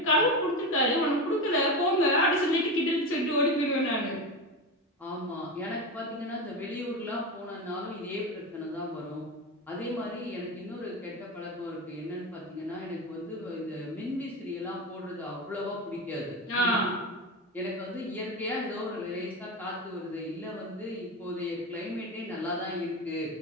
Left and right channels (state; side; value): normal; both; correlation 0.20